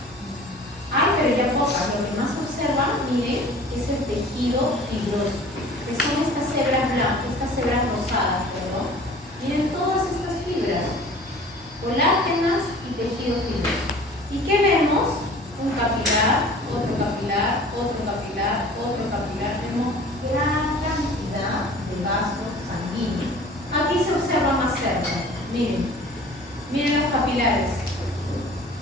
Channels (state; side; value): normal; both; correlation 0.45